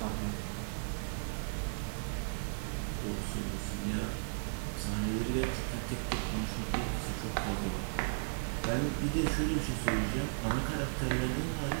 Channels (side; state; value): left; silent; digital silence